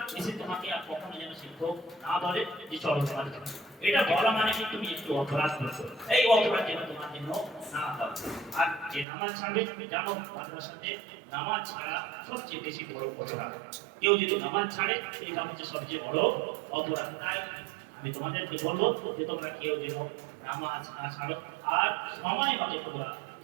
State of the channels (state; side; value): drops out; left; at 9.1 s